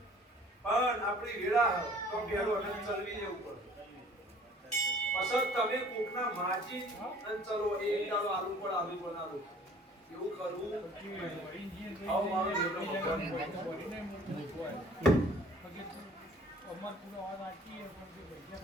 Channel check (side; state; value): both; normal; correlation 0.52